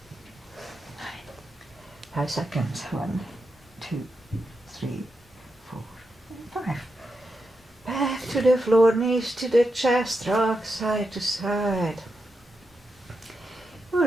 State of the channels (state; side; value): normal; both; correlation 0.86